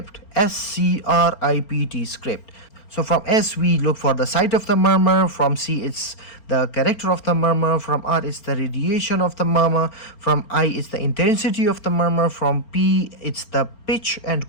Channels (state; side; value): late; right; 4.4 ms